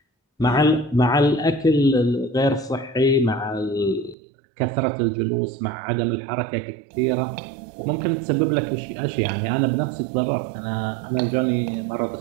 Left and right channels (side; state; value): left; drops out; at 4.2 s